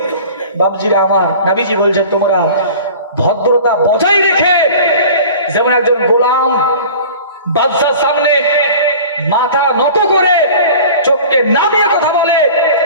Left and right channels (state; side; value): inverted; both; correlation -0.41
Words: বাপজিরা আমার, নবীজি বলছেন তোমরা ভদ্রতা বজায় রেখে, যেমন একজন গোলাম বাদশার সামনে মাথা নত করে চোখকে নামিয়ে কথা বলে,